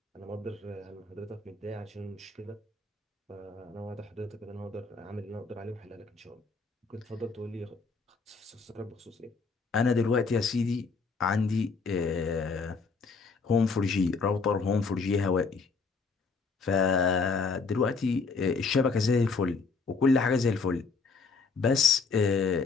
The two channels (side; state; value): right; quieter; 4.6 dB